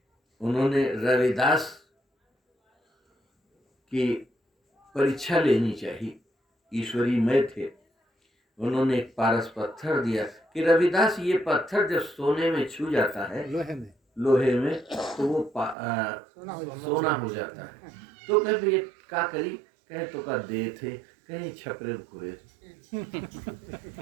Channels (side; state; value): left; drops out; at 15.8 s